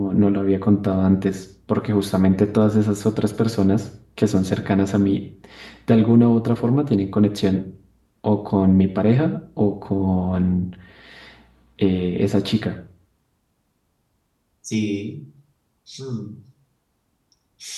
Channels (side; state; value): both; identical; correlation 1.00